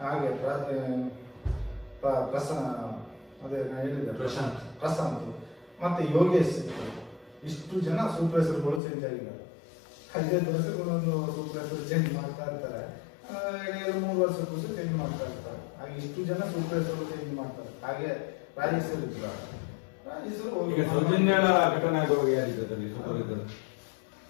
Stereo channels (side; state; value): right; drops out; at 8.8 s